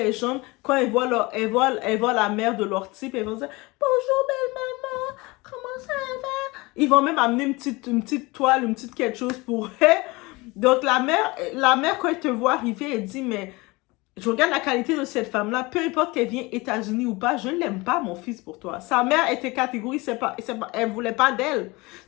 jambes. Quand elles voient la mère de leur type, elles vont dire bonjour belle maman, comment ça va? Ils vont même amener une petite toile, une petite quelque chose pour elle. Donc, la mère, quand elle te voit arriver, elle dit, mais je regarde la qualité de cette femme-là, peu importe qu'elle vienne États-Unis ou pas, je ne l'aime pas, mon fils, pour toi. Sa mère était catégorique, elle voulait pas d'elle.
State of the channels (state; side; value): quieter; right; 23.6 dB